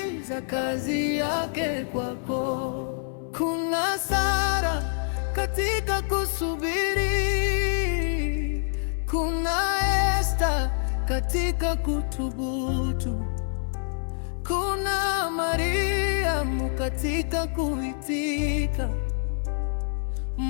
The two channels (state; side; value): silent; right; 60 dB below the other